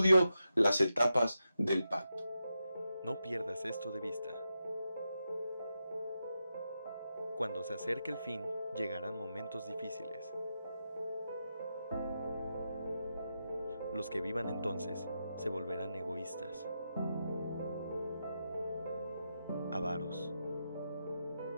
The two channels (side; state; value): both; inverted; correlation -0.87